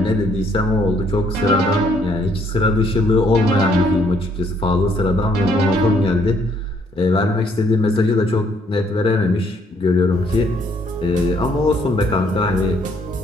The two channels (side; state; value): both; normal; correlation 0.67